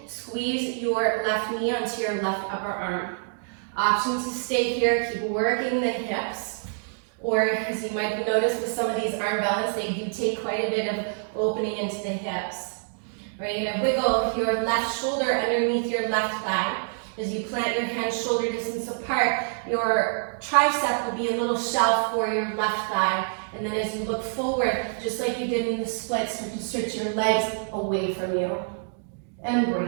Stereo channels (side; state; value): left; silent; digital silence